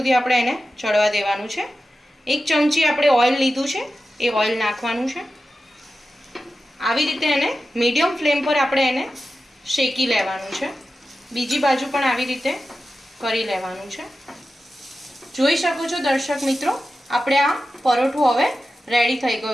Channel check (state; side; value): normal; both; correlation 0.92